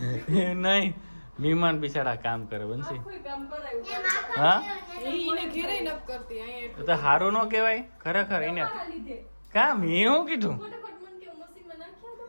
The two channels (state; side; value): inverted; both; correlation -1.00